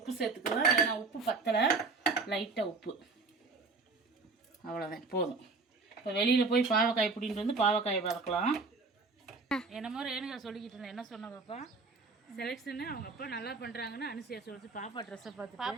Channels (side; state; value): left; quieter; 4.0 dB